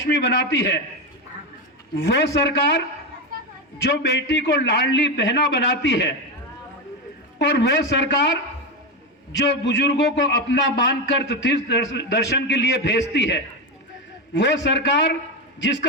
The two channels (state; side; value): normal; both; correlation 0.13